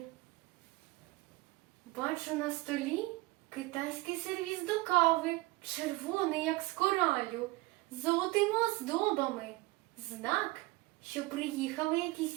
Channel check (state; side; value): quieter; left; 21.1 dB